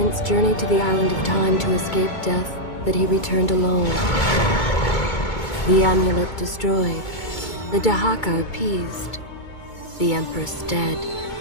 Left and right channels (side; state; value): right; late; 2.3 ms